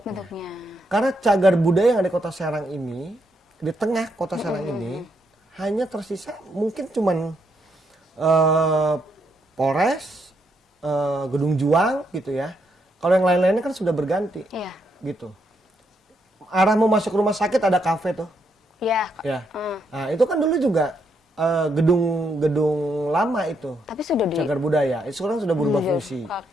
Bentuknya. Karena cagar budaya yang ada di Kota Serang ini, di tengah Kota Serang ini, hanya tersisa mungkin cuman Polres, Gedung Juang gitu ya. Kalau yang lain-lainnya kan sudah berganti, Iya. gitu. Arah mau masuk rumah sakit ada kafe tuh, Iya. ya. Nah, itu kan dulu juga gedung lama itu, Tapi sudah di cagar budaya. Itu sekarang sudah berubah fungsi.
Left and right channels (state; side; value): normal; both; correlation 0.77